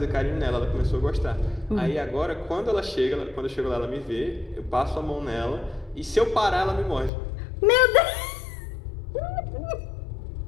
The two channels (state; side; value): drops out; right; at 7.1 s